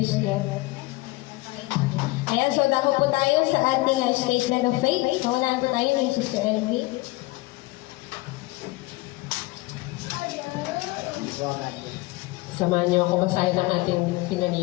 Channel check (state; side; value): quieter; right; 21.3 dB